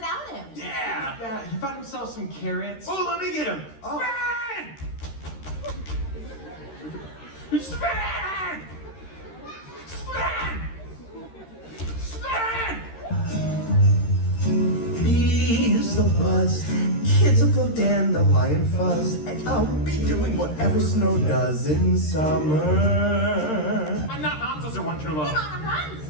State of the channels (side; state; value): right; late; 13 ms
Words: him. Yeah, he found himself some carrots. Oh, let me get him. Oh. Sven! Sven! Sven! Sven! Bees the buzz, kids will go dandelion fuzz, and I'll be doing whatever snow does in summer. I'm not Hansa's or One True Love. Anna runs.